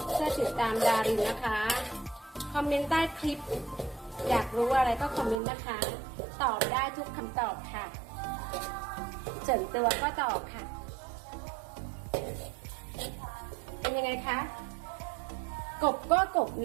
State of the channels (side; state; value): left; drops out; at 5.4 s